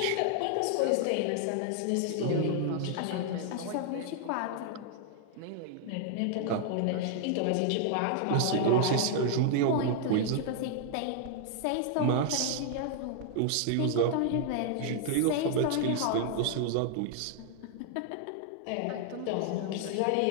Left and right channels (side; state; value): both; different; correlation 0.00